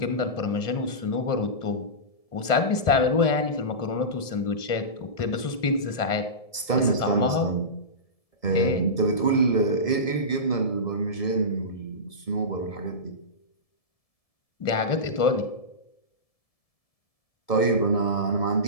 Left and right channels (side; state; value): right; late; 1.7 ms